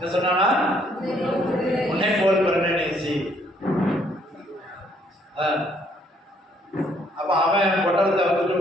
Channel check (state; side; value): normal; both; correlation 0.67